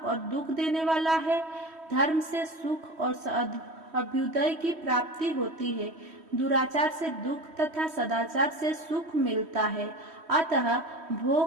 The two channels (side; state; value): left; late; 3.1 ms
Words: और दुख देने वाला है। धर्म से सुख और अभ्युदय की प्राप्ति होती है। दुराचार से दुख तथा सदाचार से सुख मिलता है। अतः